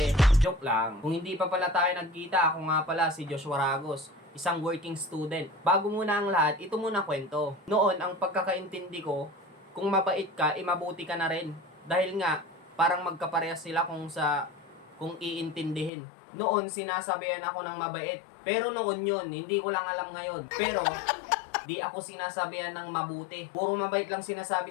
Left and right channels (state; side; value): drops out; right; at 15.9 s